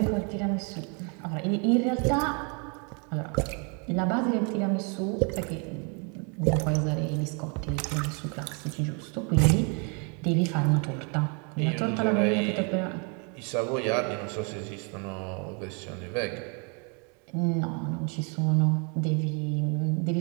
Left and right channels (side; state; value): left; quieter; 36.0 dB